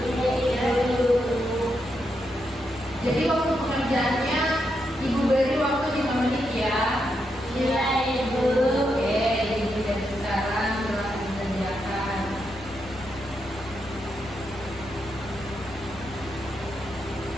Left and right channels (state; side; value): noise; right; hum, 21 dB below the sound